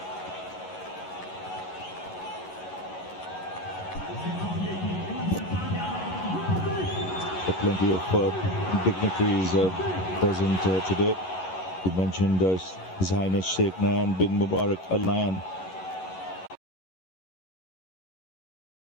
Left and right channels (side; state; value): right; late; 11 ms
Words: Plenty of dignitaries present today. You mentioned His Highness Sheikh Nayan bin Mubarak Al Nayan